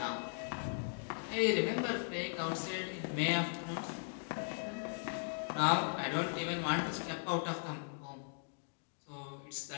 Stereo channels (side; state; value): right; silent; digital silence